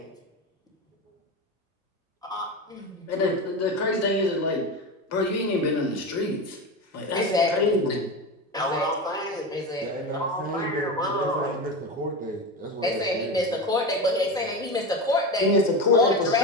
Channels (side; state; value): both; normal; correlation 0.22